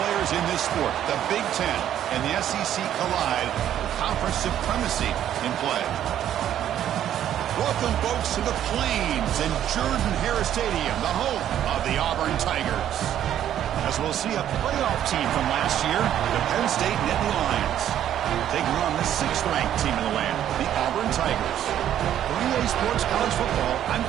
players in this sport, the Big Ten and the SEC, collide with conference supremacy in play. Welcome, folks, to the Plains and Jordan-Hare Stadium, the home of the Auburn Tigers. As we'll see a playoff team from last year, the Penn State Nittany Lions, taking on the 6th-ranked team in the land, the Auburn Tigers. For EA Sports College Football, I'm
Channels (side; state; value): left; quieter; 10.9 dB